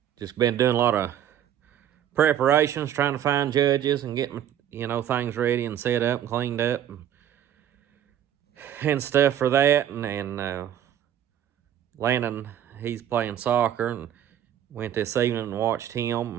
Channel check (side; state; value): left; quieter; 10.4 dB